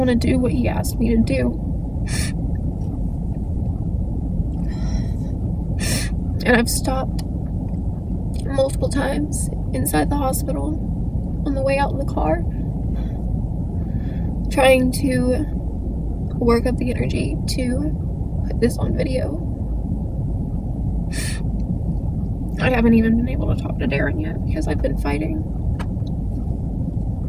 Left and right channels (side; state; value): both; identical; correlation 1.00